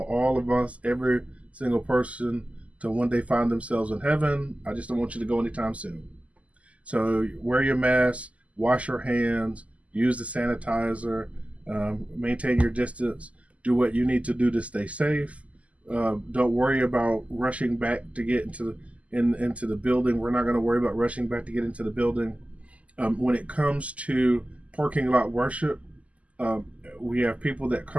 all of us, every single person, to one day find themselves in heaven. I just don't want you to go anytime soon. So wear your mask, wash your hands, use the sanitizer, maintain your distance, do what you need to do to stay safe. Don't worry about rushing back to get into the building. We're not going to worry about rushing back to get into the building. When it comes to parking lot worship, we have people that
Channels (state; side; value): late; left; 0.067 ms